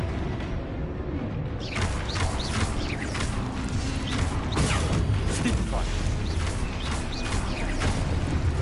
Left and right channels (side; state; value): both; identical; correlation 1.00